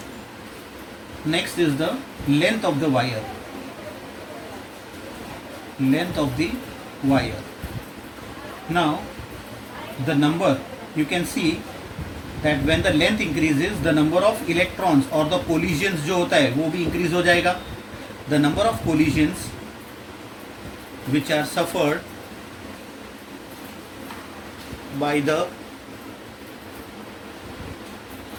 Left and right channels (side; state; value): both; identical; correlation 1.00